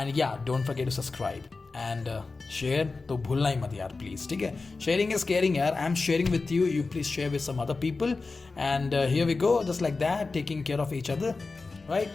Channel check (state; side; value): quieter; right; 3.9 dB